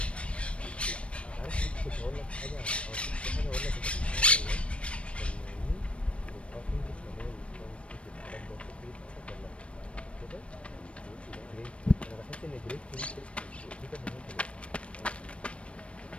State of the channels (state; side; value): late; right; 0.060 ms